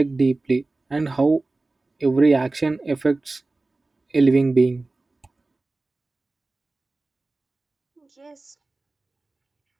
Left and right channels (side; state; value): left; quieter; 3.2 dB